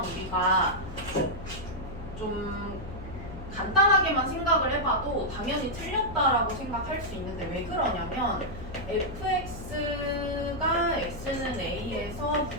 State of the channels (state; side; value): noise; left; hum, 12 dB below the sound